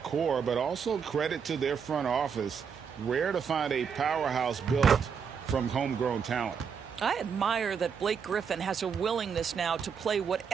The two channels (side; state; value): left; quieter; 6.7 dB